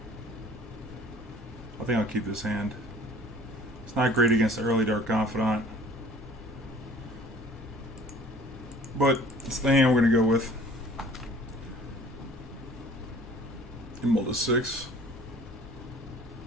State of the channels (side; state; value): both; normal; correlation 0.49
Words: I think I'll keep this hand. It's not great against the early Dark Confidant, but it's the hand we're going to go with. Emerald to 6.